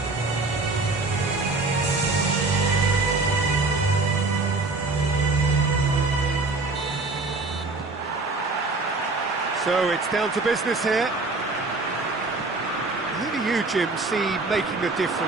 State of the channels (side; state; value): left; quieter; 3.5 dB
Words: So it's down to business here. Who do you, Jim, see making a